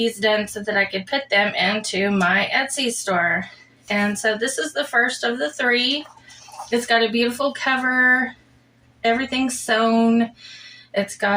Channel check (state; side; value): identical; both; correlation 1.00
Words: done so that I could put them into my Etsy store. And so this is the first of the 3. It's got a beautiful cover, everything's sewn. It's